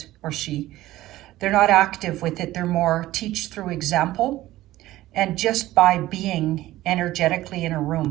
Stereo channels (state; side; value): quieter; left; 16.0 dB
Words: or she. They're not active with it. They're more teach through example, and just by being energetically in a